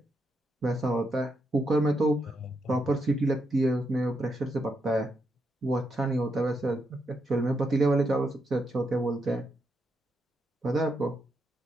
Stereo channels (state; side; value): normal; both; correlation 0.81